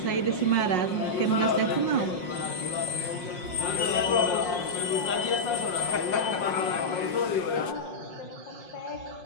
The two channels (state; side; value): late; right; 5.6 ms